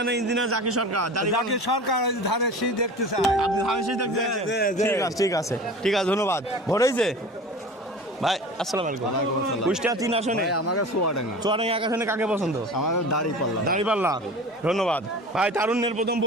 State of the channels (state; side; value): normal; both; correlation 0.36